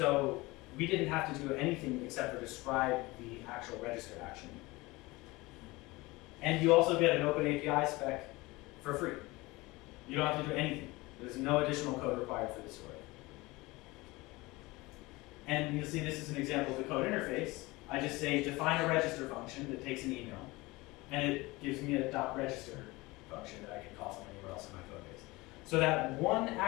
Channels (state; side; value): quieter; right; 21.9 dB